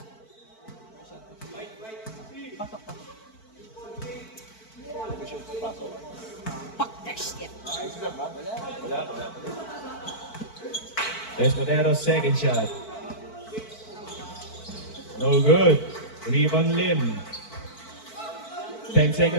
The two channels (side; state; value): right; late; 4.5 ms